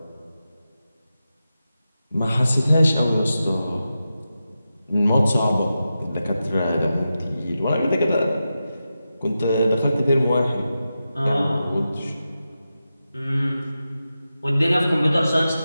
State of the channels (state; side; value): inverted; both; correlation -0.91